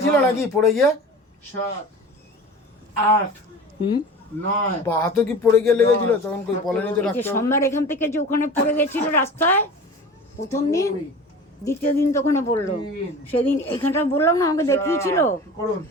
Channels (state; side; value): normal; both; correlation 0.37